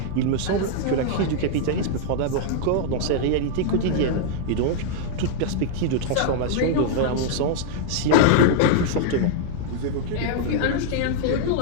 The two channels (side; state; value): both; different; correlation -0.01